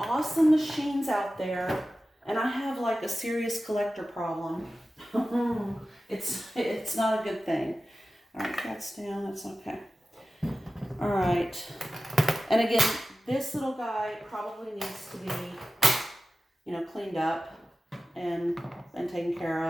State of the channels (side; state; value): both; normal; correlation 0.95